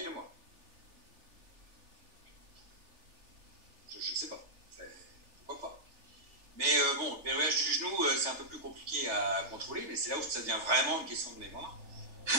moi. Je ne sais pas. Pourquoi pas. Mais bon, le verrouillage du genou, c'est un peu plus compliqué à contrôler, mais c'est là où ça devient vraiment une question de mémoire.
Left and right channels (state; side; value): late; left; 3.4 ms